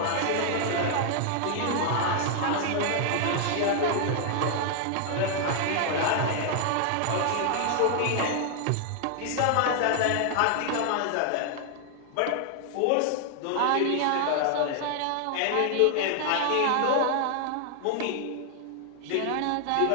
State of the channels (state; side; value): different; both; correlation 0.00